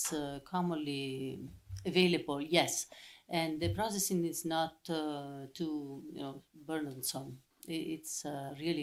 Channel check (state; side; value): identical; both; correlation 1.00